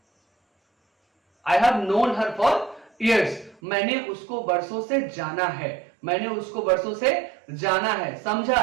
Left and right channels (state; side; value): drops out; left; at 3.6 s